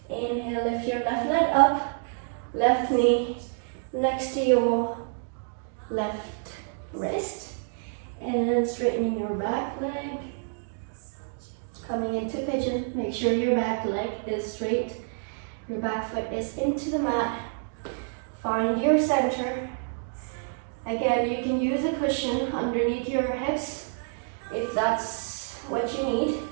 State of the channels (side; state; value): left; silent; 59 dB below the other